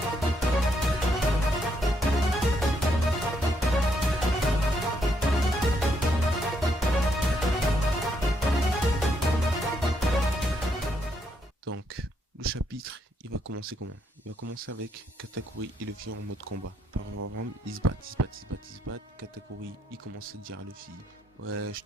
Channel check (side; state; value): both; normal; correlation 0.75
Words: Donc, le chapitre, il va commencer comment? Il va commencer avec Katakuri et Luffy en mode combat. Par exemple, ils se battent, ils se battent, ils se battent, ils se battent. Katakuri, il commence à dire à Luffy, ouais, je